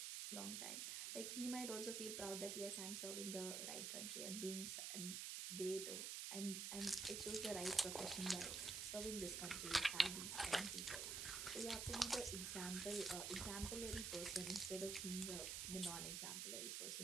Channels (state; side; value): noise; right; hiss, 2 dB below the sound